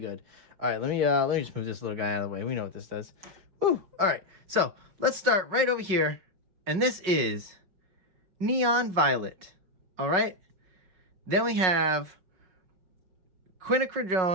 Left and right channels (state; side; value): late; left; 5.4 ms